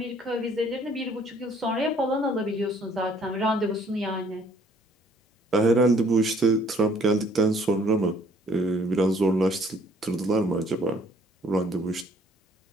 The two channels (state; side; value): normal; both; correlation 0.61